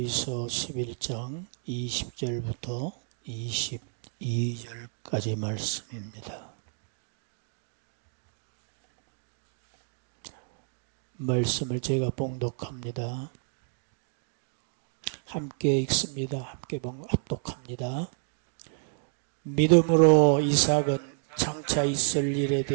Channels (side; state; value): left; silent; digital silence